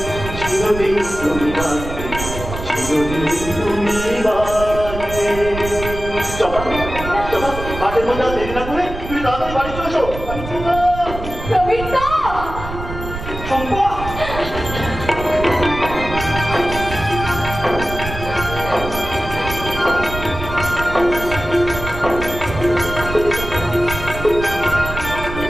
চিরদিন তুমি বাজবে, চিরদিন তুমি বাজবে। চম্পা চম্পা, মাঠের মধ্যে আর দেরি না করে তুমি তাড়াতাড়ি বাড়ি চলে এসো। প্রবীরদা! চম্পা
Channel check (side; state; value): right; noise; rumble, 8 dB below the sound